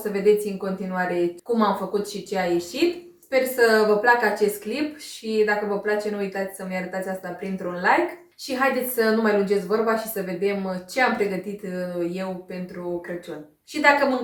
vedeți în continuare cum am făcut și ce a ieșit. Sper să vă placă acest clip și dacă vă place nu uitați să-mi arătați asta printr-un like. Și haideți să nu mai lungesc vorba și să vedem ce am pregătit eu pentru Crăciun. Și dacă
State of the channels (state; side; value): identical; both; correlation 1.00